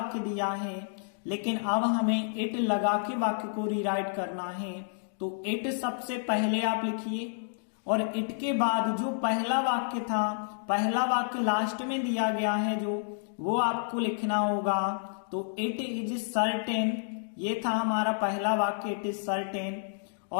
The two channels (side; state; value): right; silent; digital silence